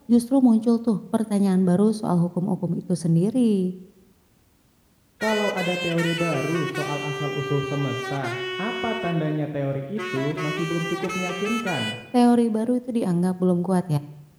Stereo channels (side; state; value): both; identical; correlation 1.00